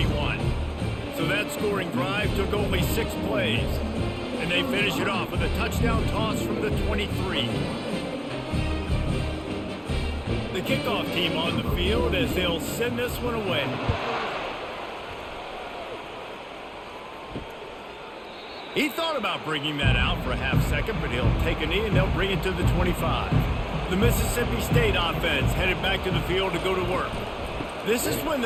So that scoring drive took only 6 plays. And they finish it off with a touchdown toss from the 23. The kickoff team on the field as they'll send this one away. He thought about bringing that out for a half second, but he'll take a knee and they'll bring it to the 25. The Mississippi State offense headed back to the field to go to work. This is when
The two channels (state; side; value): identical; both; correlation 1.00